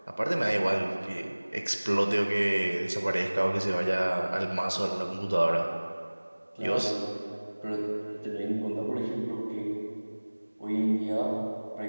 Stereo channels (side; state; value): both; inverted; correlation -1.00